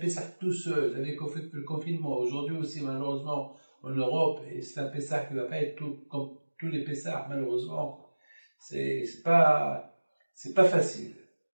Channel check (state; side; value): inverted; both; correlation -1.00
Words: tout seul, avec le confinement. Aujourd'hui aussi, malheureusement, en Europe, et c'est un Pessah qui ne va pas être tout, comme tous les Pessahs, malheureusement. C'est pas facile.